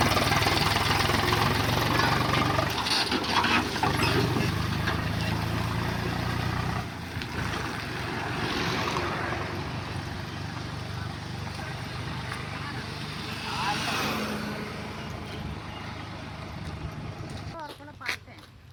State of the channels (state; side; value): identical; both; correlation 1.00